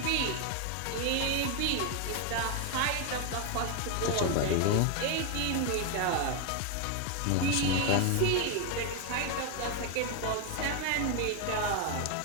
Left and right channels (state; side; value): different; both; correlation 0.01